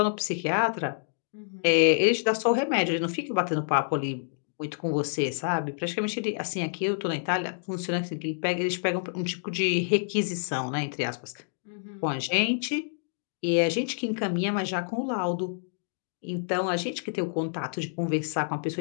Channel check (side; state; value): right; silent; digital silence